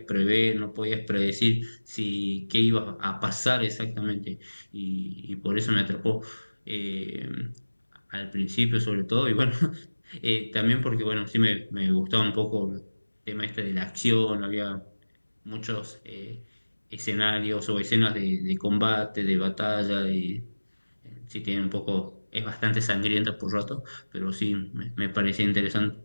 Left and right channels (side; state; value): both; inverted; correlation -1.00